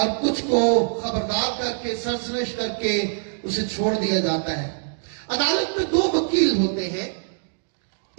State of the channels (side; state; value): left; silent; digital silence